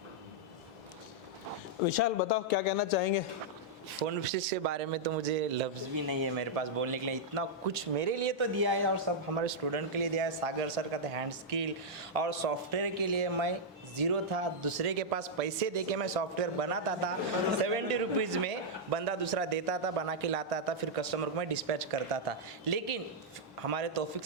विशाल बताओ क्या कहना चाहेंगे? फ़ोन फिक्स के बारे में तो मुझे लफ्ज़ भी नहीं है मेरे पास बोलने के लिए। इतना कुछ मेरे लिए तो दिया है और सब हमारे स्टूडेंट के लिए दिया है। सागर सर का था हैंड स्किल और सॉफ्टवेयर के लिए मैं ज़ीरो था, दूसरे के पास पैसे दे के मैं सॉफ्टवेयर बनाता था। 70 रुपीज़ में बंदा दूसरा देता था, बना के लाता था, फिर कस्टमर को मैं डिस्पैच करता था। लेकिन हमारे तौफिक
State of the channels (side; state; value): both; normal; correlation -0.06